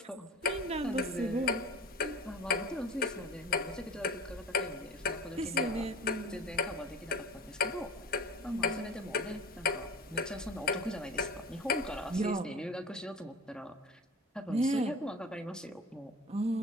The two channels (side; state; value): both; normal; correlation 0.36